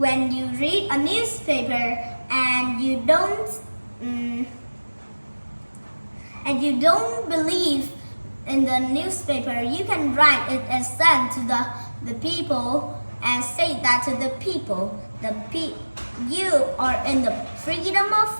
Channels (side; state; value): both; inverted; correlation -1.00